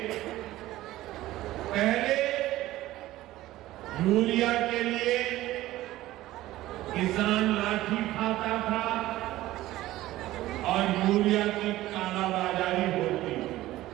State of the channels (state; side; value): quieter; left; 16.0 dB